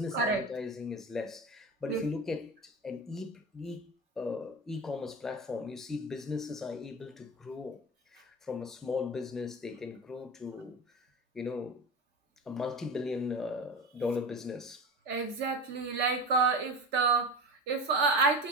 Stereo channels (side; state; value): both; normal; correlation 0.28